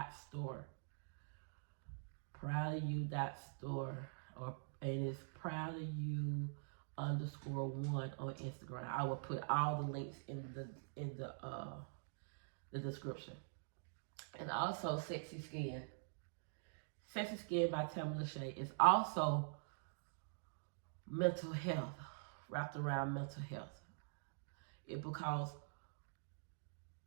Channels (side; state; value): left; silent; digital silence